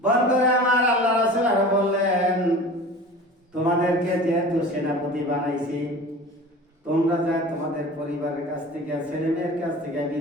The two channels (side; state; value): both; normal; correlation 0.38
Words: বন্ধুরা আমার, আল্লাহ রাসূল আরো বললেন, তোমাদেরকে যেহেতু সেনাপতি বানাইছি, তোমরা যা তোমাদের পরিবারের কাছ থেকে ছেলে মেয়ের কাছ থেকে